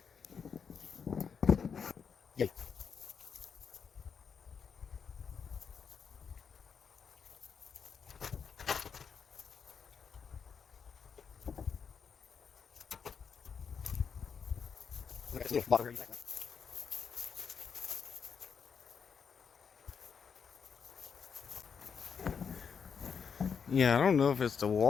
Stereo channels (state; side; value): quieter; right; 6.5 dB